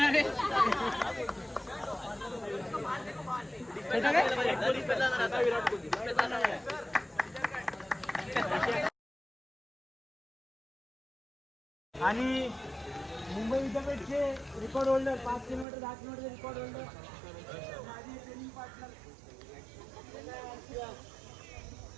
आहे आणि मुंबई विद्यापीठचे record holder 5 kilometre 10 kilometre record holder माझे ट्रेनिंग पार्टनर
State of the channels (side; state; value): left; drops out; at 15.7 s